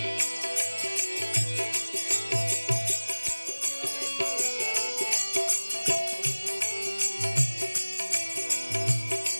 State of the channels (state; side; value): inverted; both; correlation -1.00